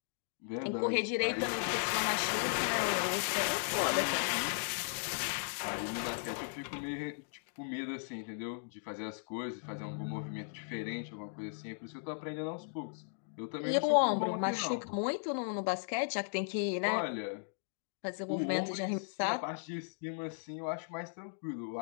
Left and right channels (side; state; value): right; silent; digital silence